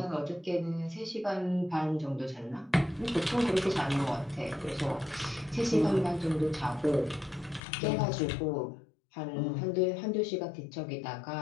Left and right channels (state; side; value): drops out; right; at 7.6 s